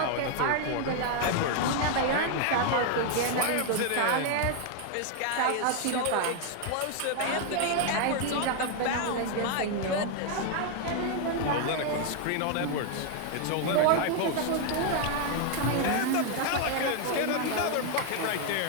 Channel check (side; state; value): both; different; correlation 0.00